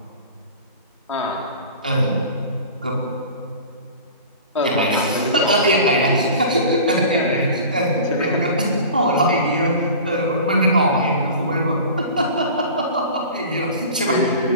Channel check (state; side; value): inverted; both; correlation -0.38